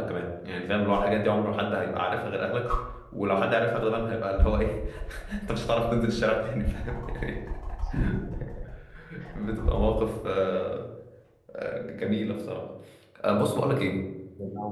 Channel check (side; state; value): both; identical; correlation 1.00